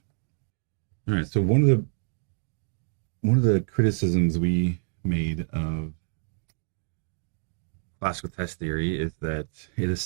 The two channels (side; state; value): left; silent; 60 dB below the other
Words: All right, so one of the criticisms we made of classical test theory is that it